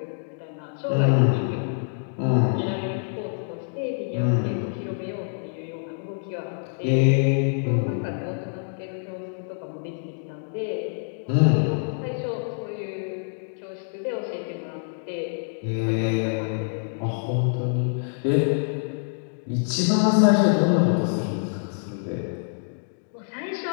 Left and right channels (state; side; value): silent; right; digital silence